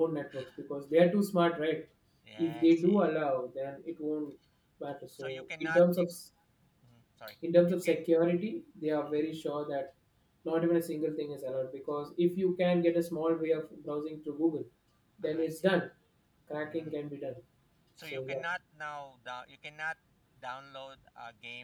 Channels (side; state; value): both; identical; correlation 1.00